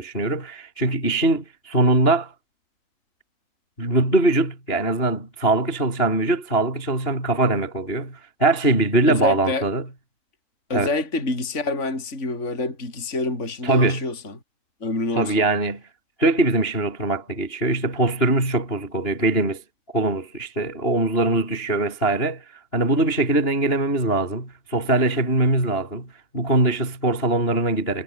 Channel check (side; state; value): right; late; 2.9 ms